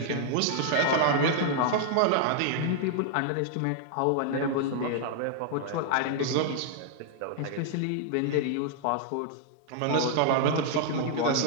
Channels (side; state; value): both; different; correlation 0.00